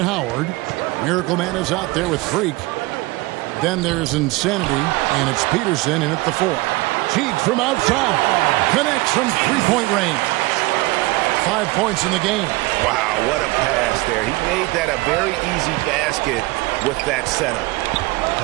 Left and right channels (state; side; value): quieter; left; 21.8 dB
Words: Howard. Miracle Man is out there with Freak. Then there's Insanity, and it's Peterson in at the 4. Cheek from outside. Connects from three-point range. 5 points in the game. Wow, what a pass there. He made that a very easy basket with that setup.